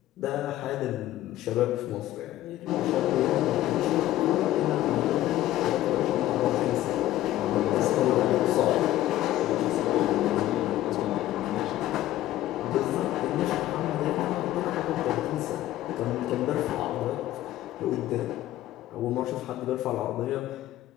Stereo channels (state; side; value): quieter; right; 14.3 dB